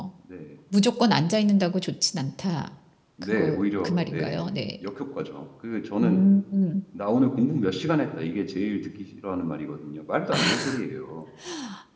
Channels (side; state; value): both; identical; correlation 1.00